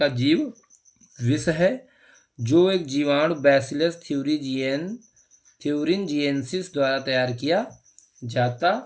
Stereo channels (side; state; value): both; identical; correlation 1.00